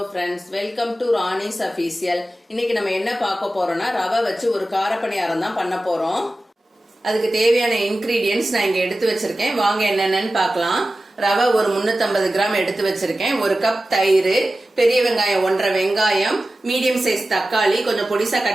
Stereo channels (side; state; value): both; normal; correlation 0.95